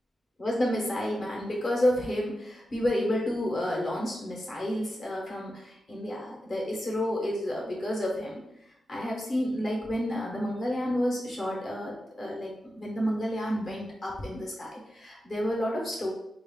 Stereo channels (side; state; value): both; normal; correlation 0.90